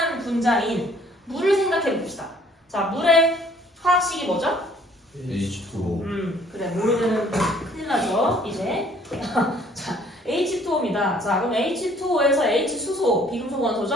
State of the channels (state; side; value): normal; both; correlation 0.59